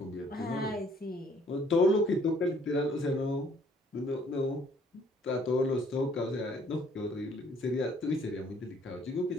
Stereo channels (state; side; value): normal; both; correlation 0.61